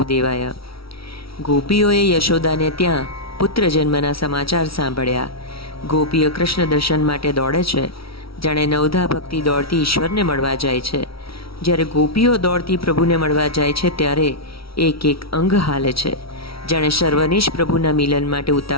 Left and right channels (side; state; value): right; late; 0.75 ms